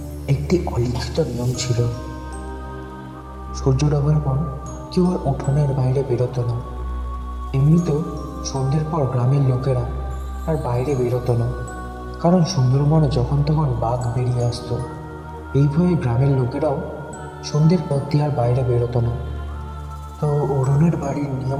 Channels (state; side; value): identical; both; correlation 1.00